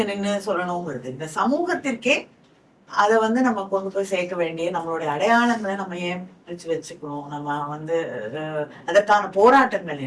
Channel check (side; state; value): both; identical; correlation 1.00